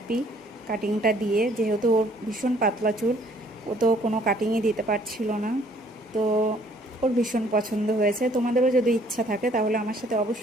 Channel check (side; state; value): both; normal; correlation 0.61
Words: কাটিংটা দিয়ে, যেহেতু ওর ভীষণ পাতলা চুল, ও তো কোনো কাটিংই দিতে পারছিল না। তো ওর ভীষণ পছন্দ হয়েছে। তোমাদেরও যদি ইচ্ছা থাকে তাহলে আমার সাথে